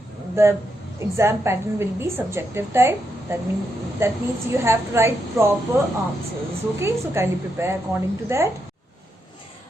the exam pattern will be subjective type. That means you have to write proper answers. Okay, so kindly prepare according to that.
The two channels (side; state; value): both; normal; correlation 0.82